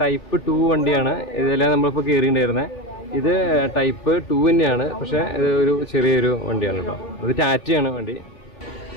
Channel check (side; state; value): right; late; 3.4 ms